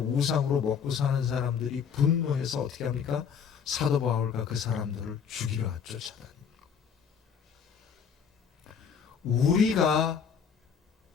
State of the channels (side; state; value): right; quieter; 7.0 dB